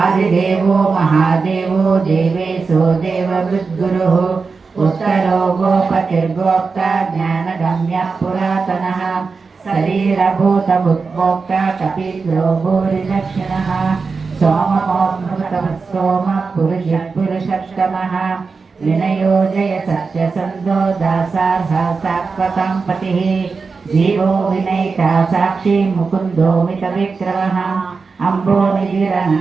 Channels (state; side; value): quieter; left; 4.7 dB